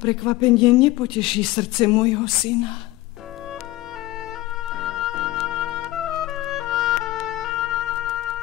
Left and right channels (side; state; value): right; quieter; 17.6 dB